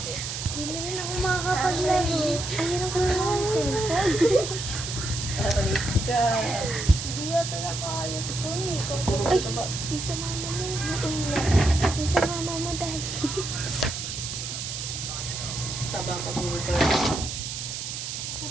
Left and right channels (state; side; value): noise; right; hiss, 5 dB below the sound